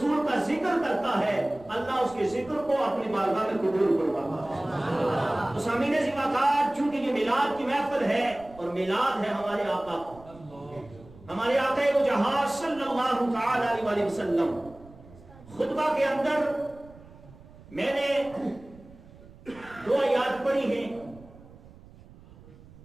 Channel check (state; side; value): noise; right; rumble, 22 dB below the sound